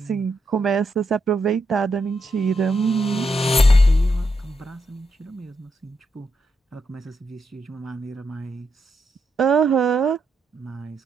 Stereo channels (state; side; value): normal; both; correlation 0.82